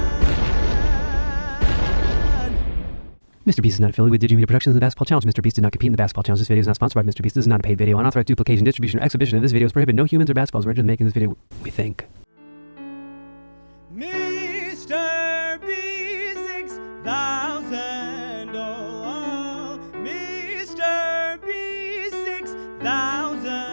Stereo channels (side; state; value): both; inverted; correlation -1.00